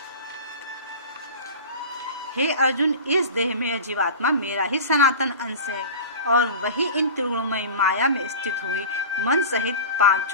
हे अर्जुन, इस देह में यह जीवात्मा मेरा ही सनातन अंश है और वही इन त्रिगुणमयी माया में स्थित हुई मन सहित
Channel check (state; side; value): inverted; both; correlation -0.34